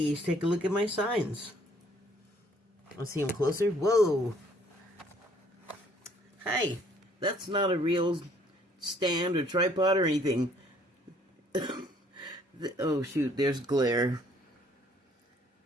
take a look at my signs. Let's see them closer. Whoa. Hi. That's not a real stand or tripod or anything. Oh, shoot, there's glare.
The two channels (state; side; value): normal; both; correlation 0.62